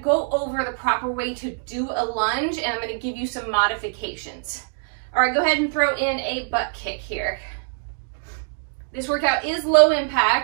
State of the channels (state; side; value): silent; left; digital silence